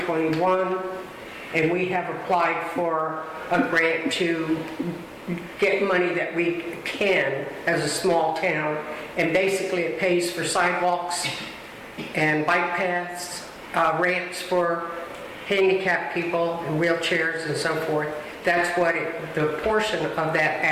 and we have applied for a grant to get money that we can as a small town, and basically it pays for sidewalks and bike paths, ramps for handicapped people and wheelchairs and so forth. That's what the portion of that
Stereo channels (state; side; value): identical; both; correlation 1.00